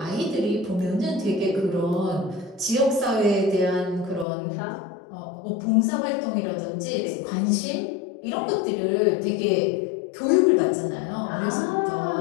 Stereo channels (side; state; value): right; drops out; at 4.2 s